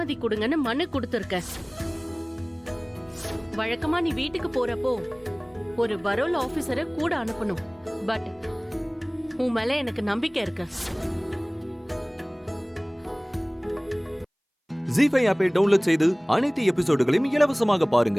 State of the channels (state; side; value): identical; both; correlation 1.00